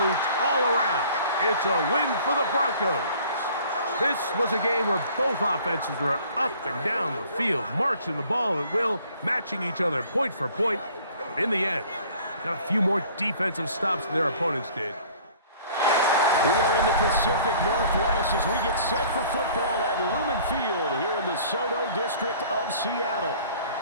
all around. It's a win for the Broncos. This was a game where both offenses were up and down the field, marching the ball at will, matching each other point for point. But in the end, got a few more defensive stops than their opponents did. We are in the Pacific Northwest as we get set for football at Lumen Field here in the Soto District of Seattle.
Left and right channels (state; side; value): inverted; both; correlation -0.52